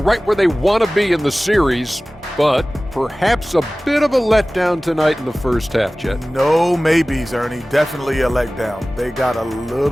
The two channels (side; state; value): both; normal; correlation 0.98